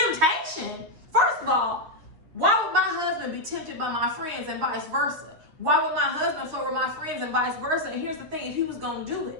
First of all, why would my husband be tempted by my friends and vice versa? Why would my husband flirt with my friends and vice versa? And here's the thing, if he was going to do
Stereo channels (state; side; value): late; left; 9.3 ms